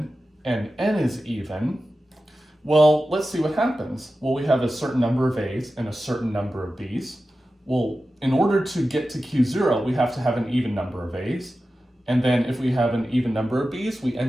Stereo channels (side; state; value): both; normal; correlation 0.93